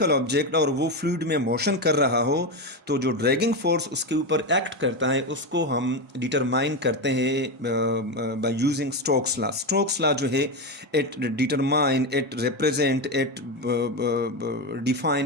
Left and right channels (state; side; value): normal; both; correlation 0.13